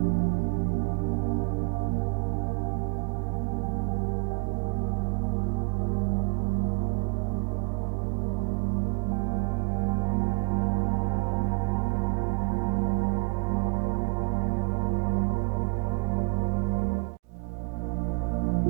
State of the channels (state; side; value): quieter; left; 31.1 dB